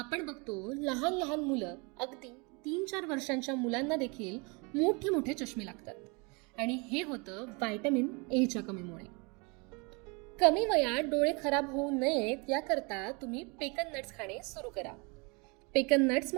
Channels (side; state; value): left; quieter; 30.3 dB